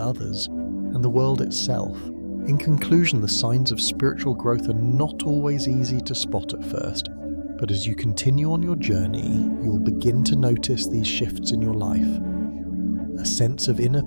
and the world itself. In conclusion, the signs of spiritual growth are not always easy to spot at first, but as you continue on your journey, you'll begin to notice these shifts in your life. A sense of inner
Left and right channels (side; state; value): both; inverted; correlation -1.00